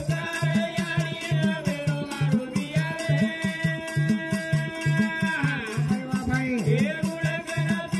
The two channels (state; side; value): identical; both; correlation 1.00